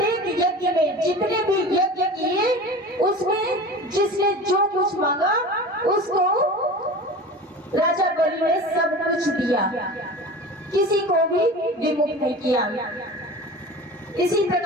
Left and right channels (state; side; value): normal; both; correlation 0.35